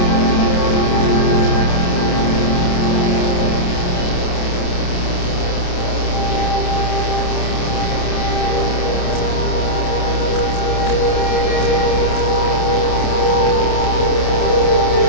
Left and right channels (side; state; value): right; late; 28 ms